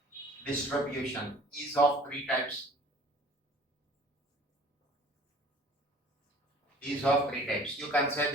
Distribution is of 3 types. Is of 3 types. You can say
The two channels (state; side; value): normal; both; correlation 0.48